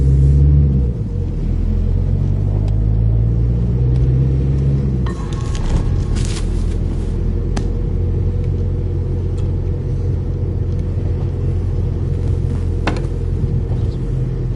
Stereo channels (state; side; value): identical; both; correlation 1.00